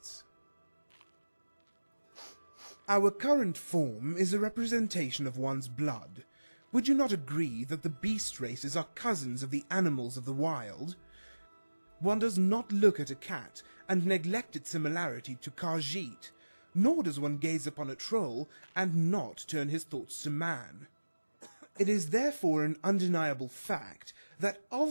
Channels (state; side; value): inverted; both; correlation -1.00